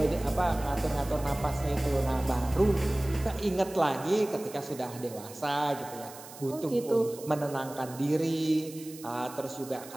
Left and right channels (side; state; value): right; noise; hiss, 17 dB below the sound